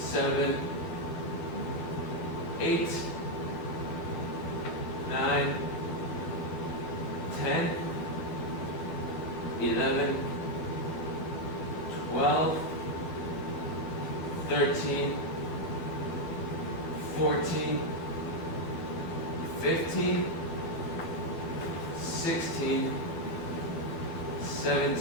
8, 9, 10, 11, 12, 13, 14, 15, 16,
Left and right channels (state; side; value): late; right; 12 ms